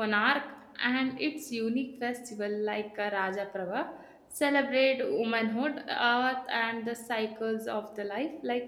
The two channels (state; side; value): identical; both; correlation 1.00